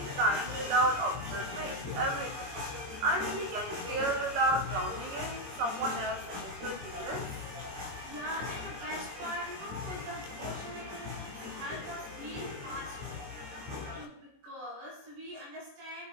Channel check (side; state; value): left; late; 22 ms